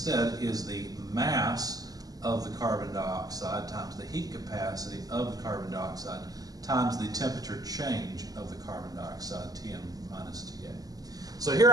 is the mass of the carbon dioxide times the heat capacity of the carbon dioxide times the temperature change of the carbon dioxide, Tm minus Ta. So here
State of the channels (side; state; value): left; late; 0.18 ms